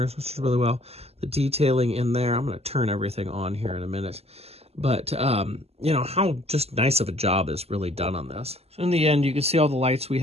which is really well. The detailing in there. I'm going to turn everything on here in a minute. But, you know, how just nice of a job is really done on this. So in the end, you can see all the lights we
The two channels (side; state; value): left; late; 0.29 ms